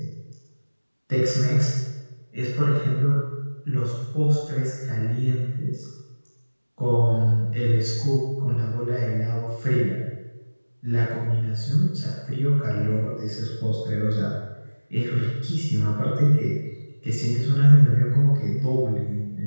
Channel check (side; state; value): both; inverted; correlation -1.00